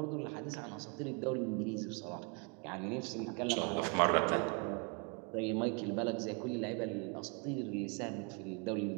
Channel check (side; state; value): left; quieter; 34.8 dB